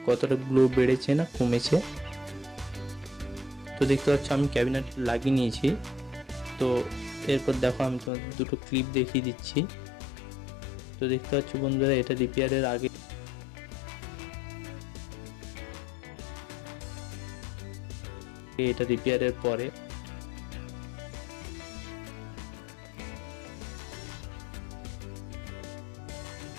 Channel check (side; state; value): right; drops out; at 8.1 s